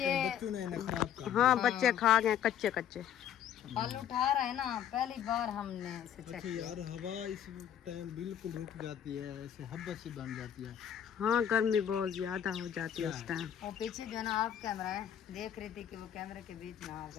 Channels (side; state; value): right; quieter; 9.6 dB